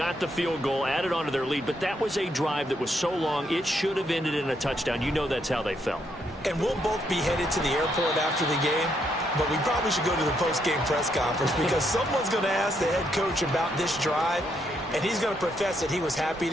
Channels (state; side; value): normal; both; correlation 0.76